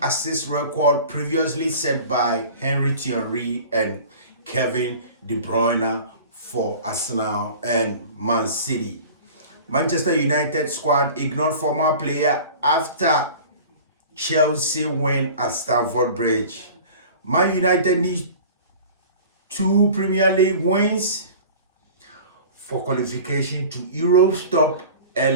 assist record previously set by Thierry and Kevin De Bruyne for Arsenal and Man City. Manchester United squad ignored former player after Chelsea win at Stamford Bridge. Man United needs 2 Premier League wins for qualification to Europe's top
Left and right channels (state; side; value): inverted; both; correlation -0.41